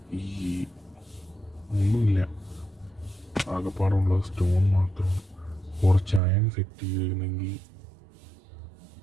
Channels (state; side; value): drops out; left; at 6.2 s